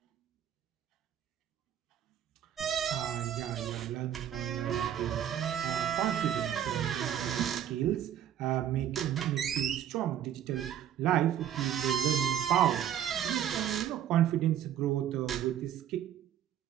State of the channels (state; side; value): quieter; left; 10.4 dB